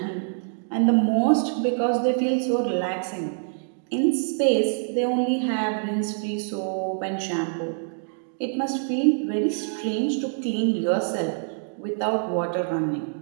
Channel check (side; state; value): left; silent; digital silence